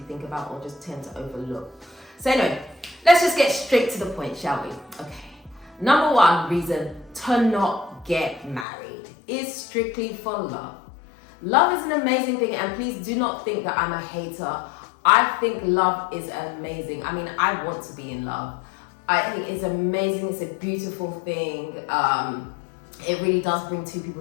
think about or just tend to overlook. So anyway, let's just get straight to the point, shall we? Okay. Number 1 reason to not get married is strictly for love. Love is an amazing thing, and please do not think that I'm a hater. I think love is amazing. I mean, I want to be in love. I think it's amazing. It's a beautiful thing. It really does bring 2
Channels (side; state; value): right; drops out; at 8.7 s